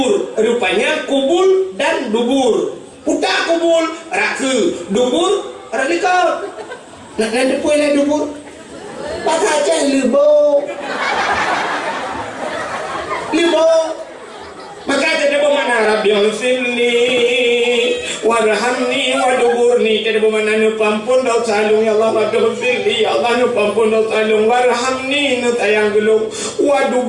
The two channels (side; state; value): both; identical; correlation 1.00